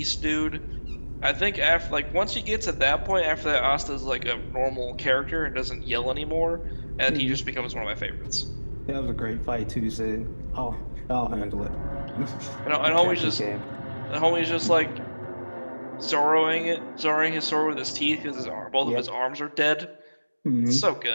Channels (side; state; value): both; inverted; correlation -1.00